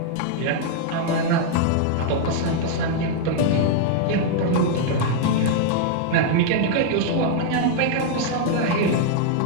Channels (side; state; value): both; different; correlation 0.00